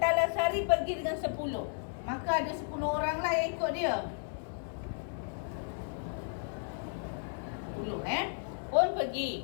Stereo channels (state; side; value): silent; right; digital silence